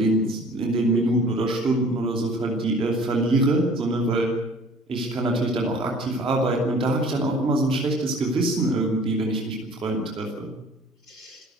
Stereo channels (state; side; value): normal; both; correlation 0.50